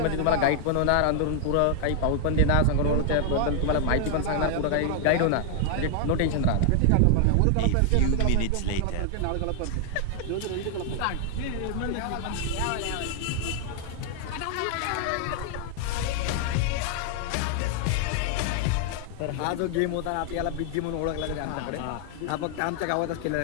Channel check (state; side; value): different; both; correlation 0.00